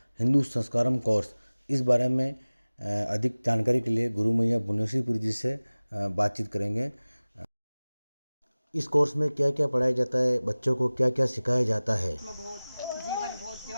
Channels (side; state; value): both; inverted; correlation -0.99